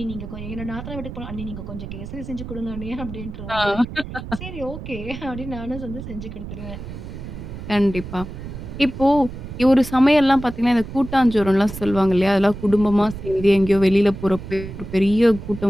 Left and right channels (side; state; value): right; noise; rumble, 10 dB below the sound